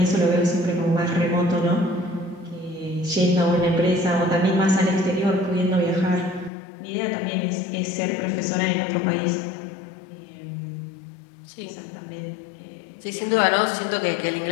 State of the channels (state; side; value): drops out; right; at 6.5 s